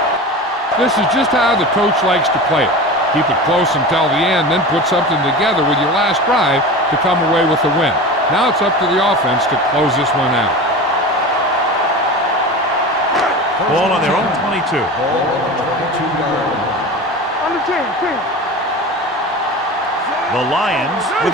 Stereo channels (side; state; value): both; normal; correlation 0.31